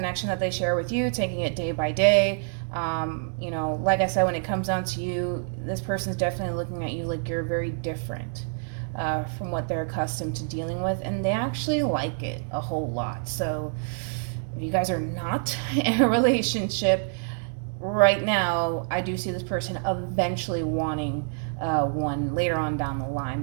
that they share with you, taking it day by day. You know, like I said, when it comes down to you, this person's definitely looking at you like you're very different from what they're accustomed to dealing with. And they actually like it a whole lot. So if you guys are not in a relationship right now, I do see this person eventually wanting one later on down the line.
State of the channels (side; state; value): left; silent; 60 dB below the other